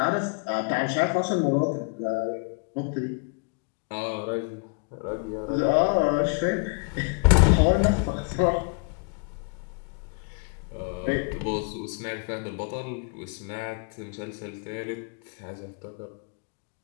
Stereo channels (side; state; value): right; quieter; 36.0 dB